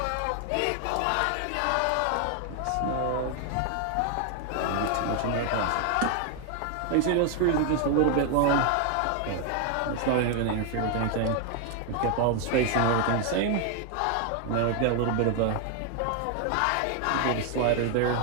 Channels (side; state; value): both; different; correlation 0.00